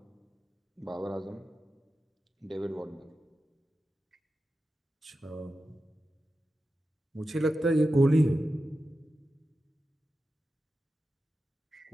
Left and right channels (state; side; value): normal; both; correlation 0.91